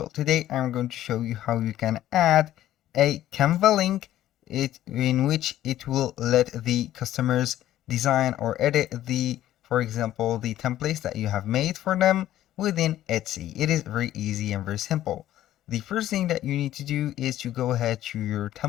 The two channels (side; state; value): right; quieter; 13.2 dB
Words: Today I'm going to show you how you can add a Canva link in which it will let the customers design or edit for example, the templates that you have made for them within Etsy. It is very easy and very simple. The first thing that you need to do is to go ahead to your